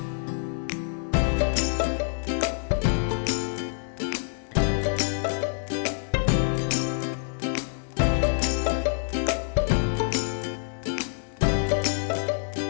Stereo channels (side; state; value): right; silent; digital silence